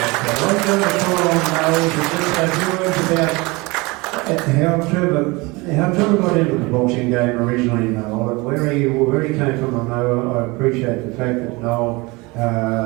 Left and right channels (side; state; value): left; quieter; 24.6 dB